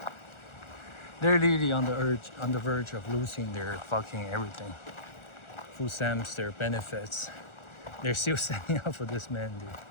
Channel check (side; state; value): right; late; 1.4 ms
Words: They're really on the verge of losing their fucking everything. Food stamps, their benefits. They're still standing up for this man, dude.